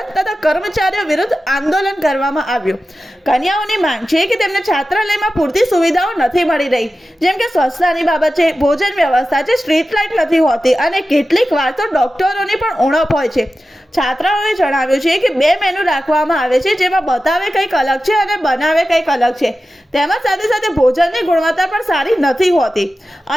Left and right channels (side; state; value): both; normal; correlation 0.94